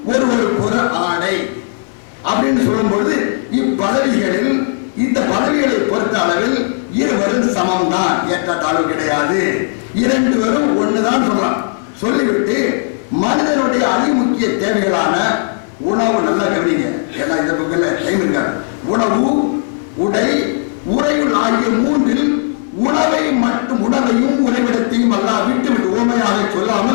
ஒருவருக்கு ஒரு ஆடை அப்படின்னு சொல்லும் பொழுது இப்பதவிகளில் இந்த பதவிகளை பொறுத்த அளவில் இருவரும் சமம் தான், ஏற்றத்தாழ்வு கிடையாது, இரண்டு பேரும் ஒண்ணுதான் சொல்லலாம். சொல்லிவிட்டு மனிதனுடைய அதிமுக்கிய தேவைகளான உணவு, நல்லா கவனிங்க, ஏன்னா இந்த பக்கத்துல டைம் இருக்காது, உணவு, உடை, உறையுள் ஆகிய மூன்றில் உணவையும் உறைவிடத்தையும் அல்லாஹ் விட்டு ஓமையாக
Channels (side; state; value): right; silent; digital silence